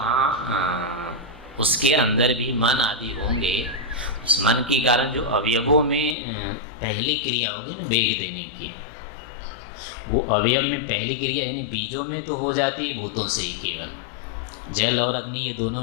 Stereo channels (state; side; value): drops out; right; at 6.2 s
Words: उसके अंदर भी मन आदि होंगे। उस मन के कारण जो अवयवों में पहली क्रिया होगी ना वेग देने की, वो अवयव में पहली क्रिया यानी बीजों में तो हो जाती है भूतों से ही, केवल जल और अग्नि ये दोनों